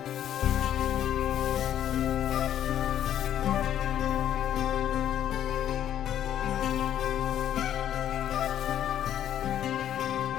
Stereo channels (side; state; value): right; quieter; 10.8 dB